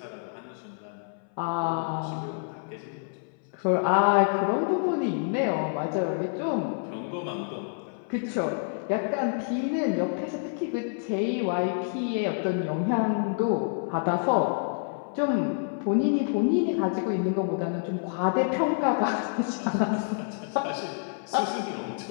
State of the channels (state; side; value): silent; right; 59 dB below the other